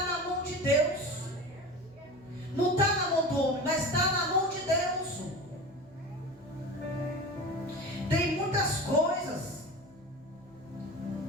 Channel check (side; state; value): right; noise; hum, 29 dB below the sound